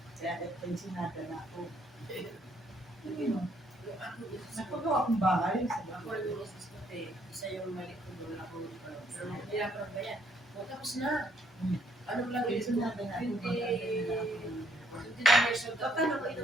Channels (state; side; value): normal; both; correlation 0.68